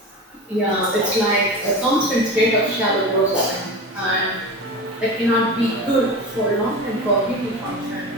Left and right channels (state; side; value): normal; both; correlation 0.28